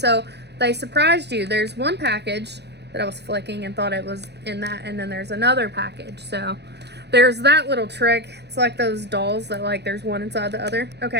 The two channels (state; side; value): late; left; 0.49 ms